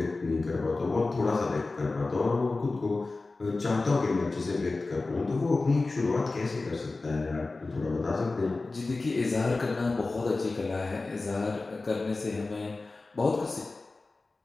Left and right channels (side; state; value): right; quieter; 3.5 dB